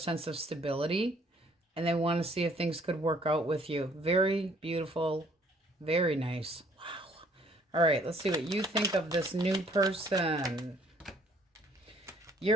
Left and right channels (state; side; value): normal; both; correlation 0.61